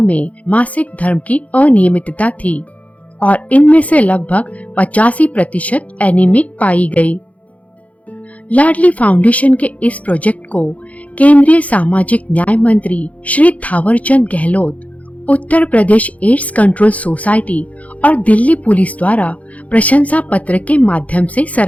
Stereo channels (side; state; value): right; late; 0.068 ms